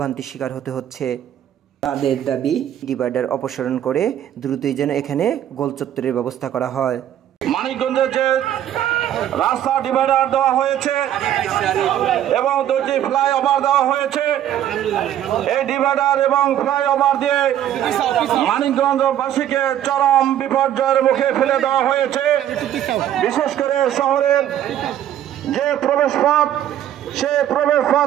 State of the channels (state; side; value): quieter; left; 11.2 dB